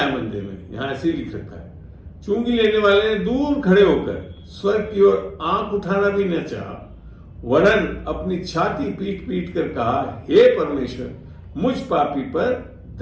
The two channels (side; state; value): both; identical; correlation 1.00